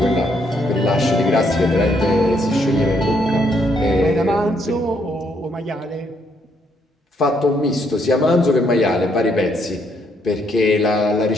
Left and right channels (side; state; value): both; normal; correlation 0.72